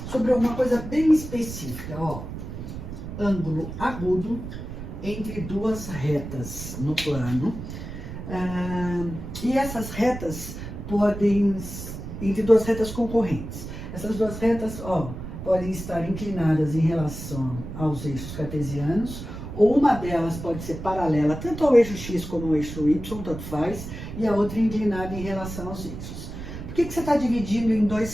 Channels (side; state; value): right; noise; rumble, 9 dB below the sound